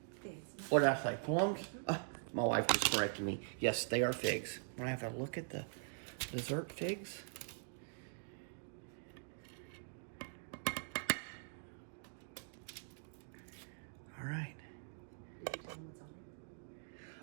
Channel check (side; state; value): left; silent; digital silence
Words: Figs. What did I say? Plums? My wife was correcting me. Yes, they are figs. I'm gonna have a look at the dessert figs. All right. Did you tell them what's on